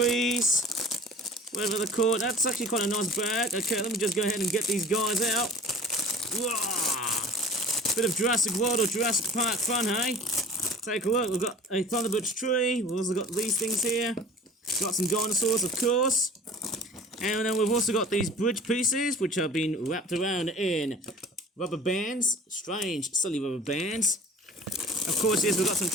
whatever they're called. That's actually quite a nice bag. Okay, let me just go ahead and get these guys out. Whoa. Bit of Jurassic World or Jurassic Park fun, hey? Take a look. We've got a Thunderbirds tree. We've also got these things here. Got some dinosaurs, of course. And then we've also got these bridge pieces, which have been wrapped around in rubber bands. Strange, silly rubber bands. Of course, yes, we've got some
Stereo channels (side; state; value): both; normal; correlation 0.43